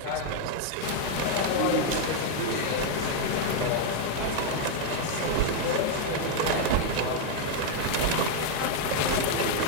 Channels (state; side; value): different; both; correlation 0.01